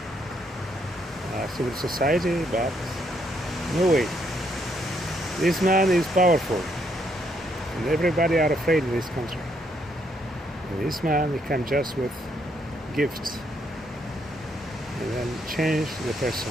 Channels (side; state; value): both; normal; correlation 0.73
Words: civil society, but no way. This man is powerful, and everybody are afraid in this country. And this man, he comes just with gifts, and then change the person.